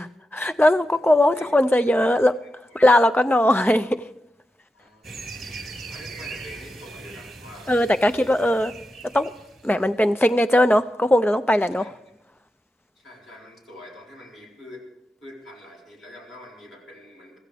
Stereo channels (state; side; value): normal; both; correlation 0.89